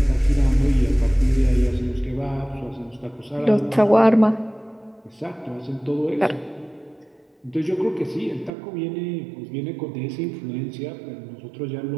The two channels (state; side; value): drops out; left; at 8.5 s